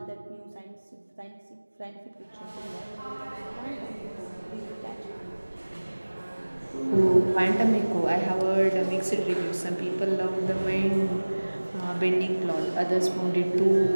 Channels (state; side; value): inverted; both; correlation -1.00